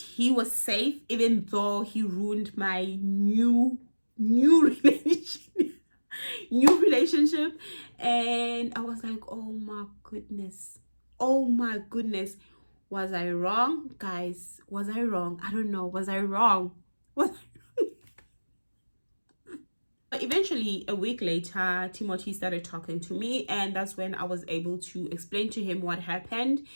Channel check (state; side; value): inverted; both; correlation -1.00